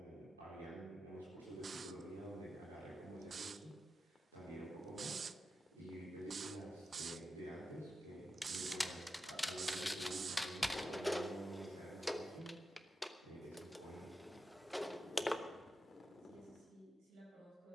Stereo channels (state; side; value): normal; both; correlation 0.90